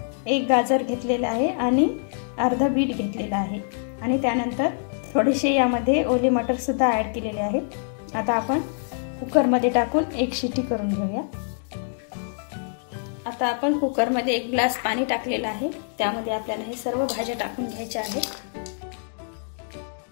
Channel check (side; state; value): right; silent; digital silence